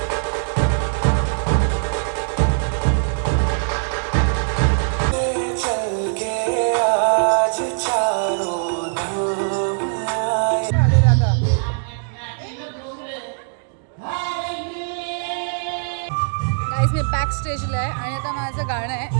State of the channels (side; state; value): left; silent; digital silence